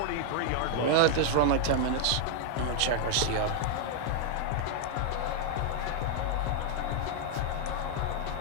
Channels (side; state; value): both; different; correlation -0.01